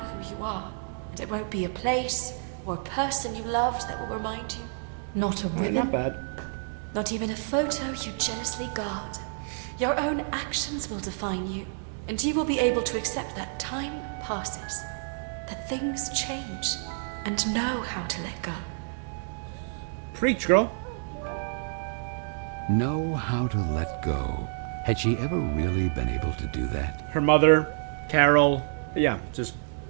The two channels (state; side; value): silent; left; digital silence